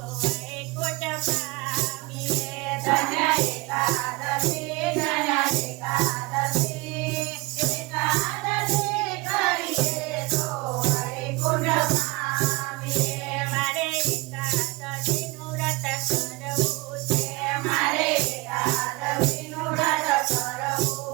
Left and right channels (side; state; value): left; quieter; 23.2 dB